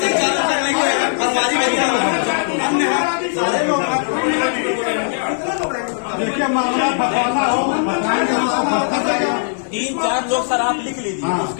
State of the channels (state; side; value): silent; right; digital silence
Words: लोग देखिए मामला फसाना हो, 3-4 लोग सर आप लिख लीजिए,